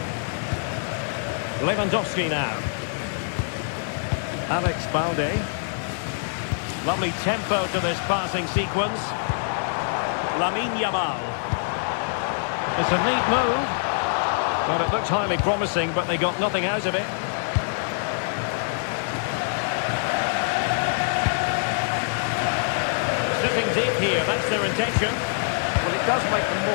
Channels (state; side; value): silent; right; 62 dB below the other